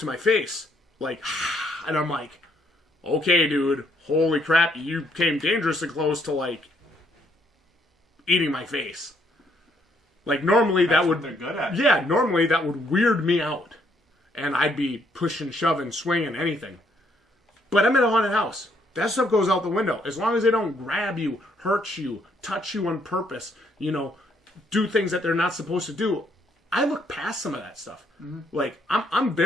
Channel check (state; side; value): normal; both; correlation 0.71